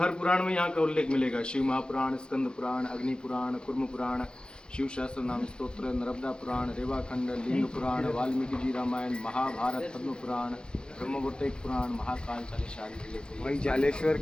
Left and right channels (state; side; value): late; right; 0.049 ms